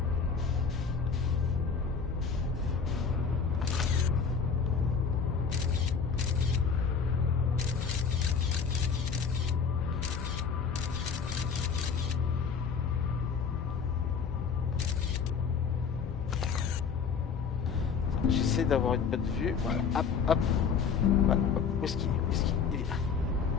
J'essaie d'avoir une bonne vue. Voilà, hop, hop. Voilà, hop. Où est-ce qu'il est? Où est-ce qu'il est? Il est là.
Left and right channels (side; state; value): right; quieter; 6.0 dB